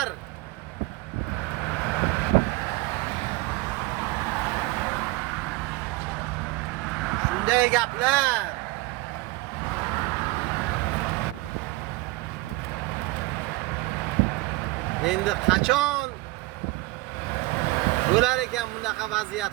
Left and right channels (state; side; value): quieter; left; 20.7 dB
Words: shunday gaplar. Endi qachon bo'lar ekan bunaqa vaziyat